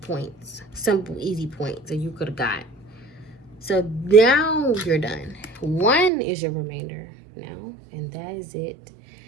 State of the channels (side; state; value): left; drops out; at 6.1 s